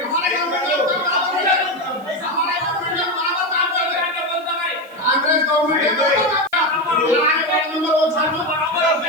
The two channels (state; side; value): noise; right; hiss, 29 dB below the sound